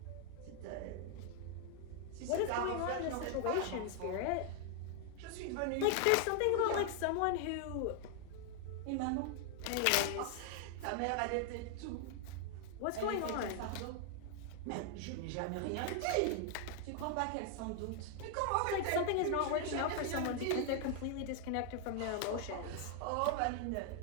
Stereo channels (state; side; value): different; both; correlation 0.00